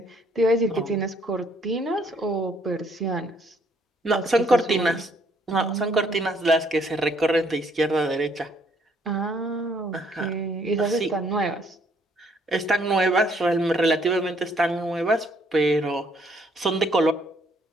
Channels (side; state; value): both; normal; correlation 0.66